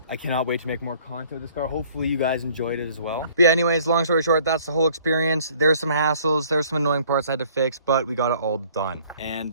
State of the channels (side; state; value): both; inverted; correlation -0.57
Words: I cannot wait to make more content with this car. Hopefully you guys enjoyed it as well. But yeah, anyways, long story short, that's the whole experience. There's some hassles, there's some annoying parts I had to fix, but we got it all done.